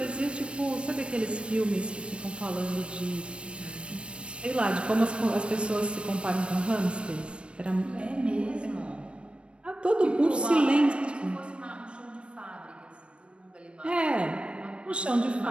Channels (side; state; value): left; late; 0.059 ms